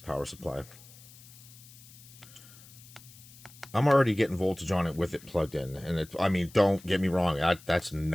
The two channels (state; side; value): noise; left; hiss, 21 dB below the sound